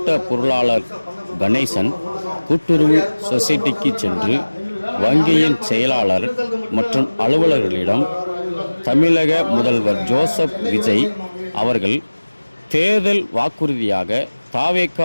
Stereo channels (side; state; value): both; inverted; correlation -1.00